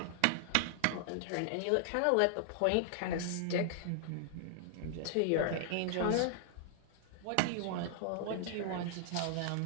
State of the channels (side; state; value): both; different; correlation 0.00